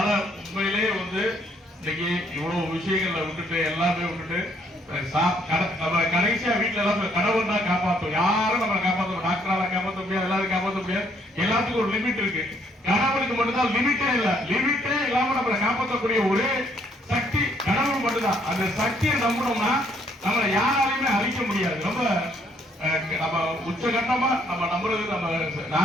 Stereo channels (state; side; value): normal; both; correlation 0.67